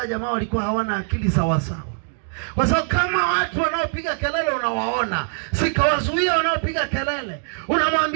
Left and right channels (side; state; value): left; silent; digital silence